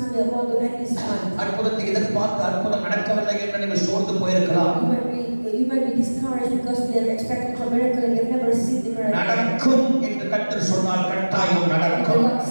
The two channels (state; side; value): inverted; both; correlation -1.00